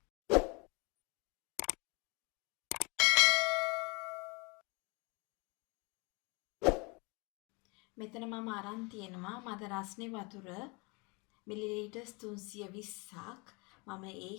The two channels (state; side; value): quieter; right; 29.3 dB